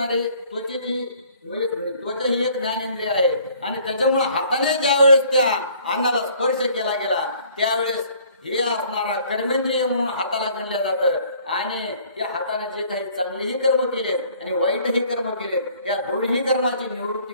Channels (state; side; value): inverted; both; correlation -0.57